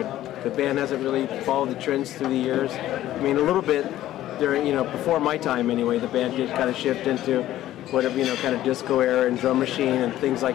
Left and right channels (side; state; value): right; quieter; 13.7 dB